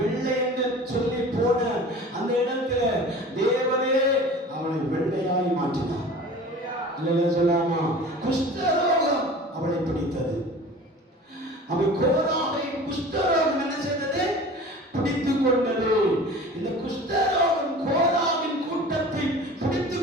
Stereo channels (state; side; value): normal; both; correlation 0.40